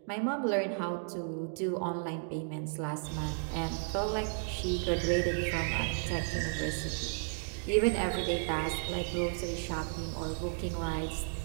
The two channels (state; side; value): silent; left; digital silence